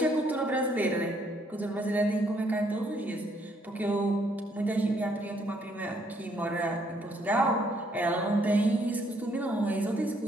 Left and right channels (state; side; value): normal; both; correlation 0.69